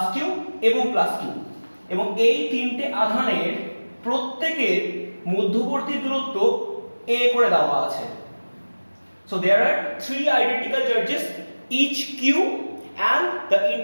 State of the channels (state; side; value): inverted; both; correlation -1.00